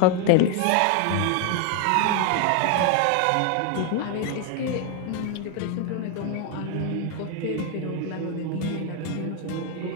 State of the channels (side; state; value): both; different; correlation 0.01